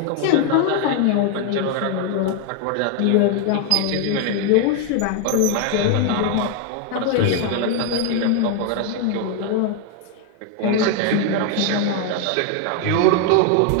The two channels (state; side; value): different; both; correlation 0.01